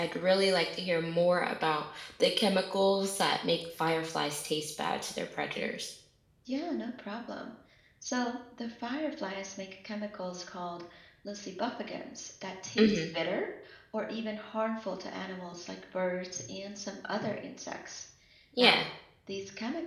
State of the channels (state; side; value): identical; both; correlation 1.00